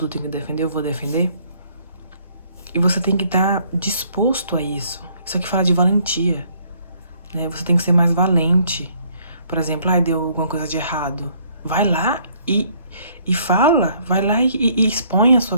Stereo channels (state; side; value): inverted; both; correlation -0.64